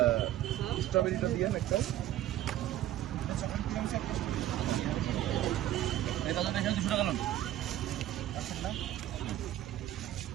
স্ট্রবেরিটা দিয়েন একটা এই কত পয়সা 200 টাকা লোন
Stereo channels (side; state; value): left; quieter; 13.4 dB